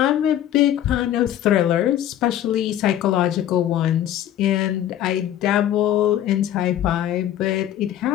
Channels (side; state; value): right; quieter; 11.5 dB